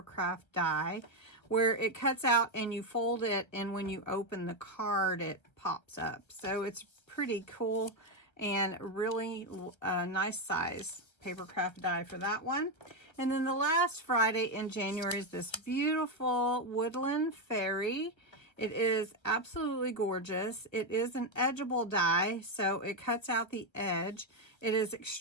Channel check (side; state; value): right; late; 1.3 ms